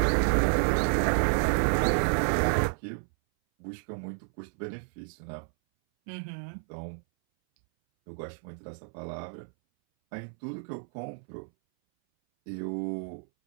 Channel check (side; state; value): left; silent; 58 dB below the other